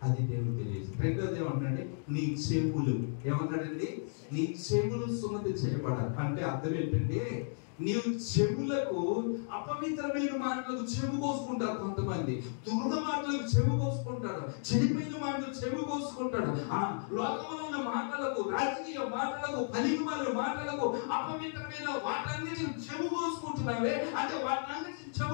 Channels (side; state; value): right; silent; digital silence